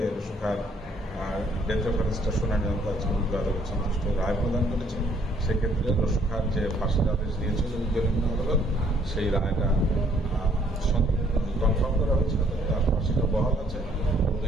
রসু খার ডেথ রেফারেন্সটা শুনানি আজকে উচ্চ আদালত সন্তুষ্ট রায় প্রদান করেছেন। সেক্ষেত্রে রসু খার যে ফাঁসির আদেশ দিয়েছিল নিম্ন আদালত, সেই রায়টা কনফার্ম করা হয়েছে, তার ফাঁসিটা বহাল আছে। এবং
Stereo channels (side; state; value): both; normal; correlation 0.64